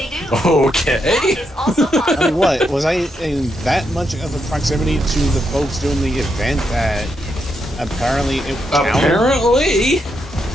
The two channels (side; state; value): both; normal; correlation 0.81